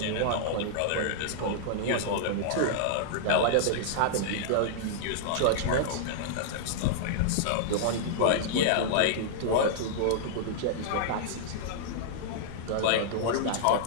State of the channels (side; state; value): both; different; correlation -0.02